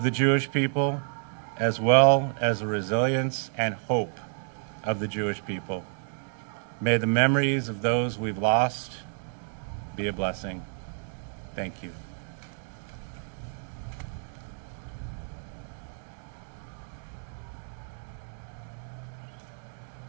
the Jewish people, as well as the resilience and hope of the Jewish people. May the memories of those we've lost be a blessing. Thank you.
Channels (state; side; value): silent; left; 58 dB below the other